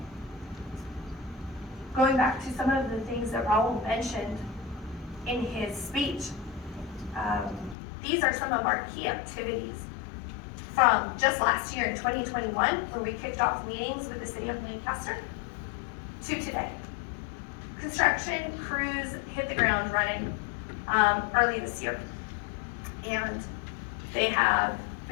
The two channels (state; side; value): drops out; right; at 7.8 s